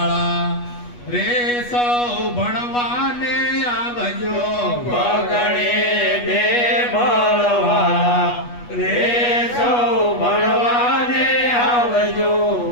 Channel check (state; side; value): late; right; 8.3 ms